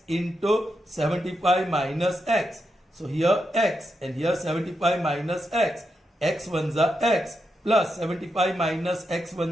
into 75 minus X. So here X and here 75 minus X. X ones are X plus 75 minus X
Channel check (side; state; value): both; normal; correlation 0.85